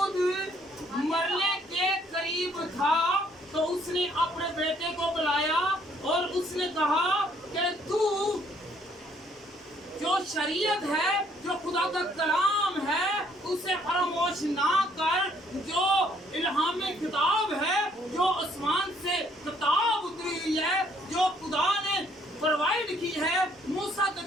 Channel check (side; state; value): both; normal; correlation 0.65